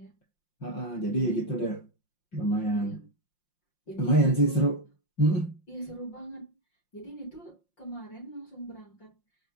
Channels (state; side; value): late; right; 5.6 ms